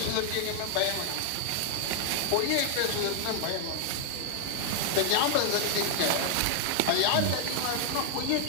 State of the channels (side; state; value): both; different; correlation 0.00